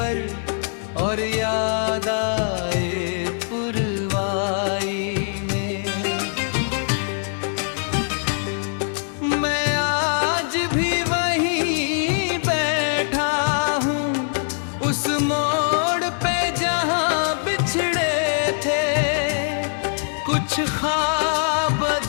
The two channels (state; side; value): silent; right; 58 dB below the other